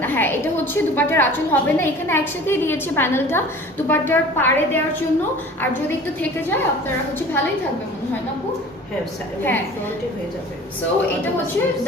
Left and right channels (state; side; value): normal; both; correlation 0.43